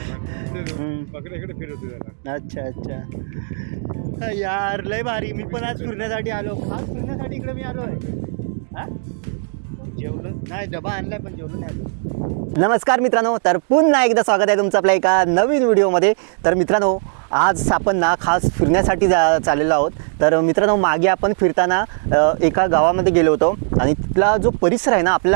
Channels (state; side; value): silent; left; 67 dB below the other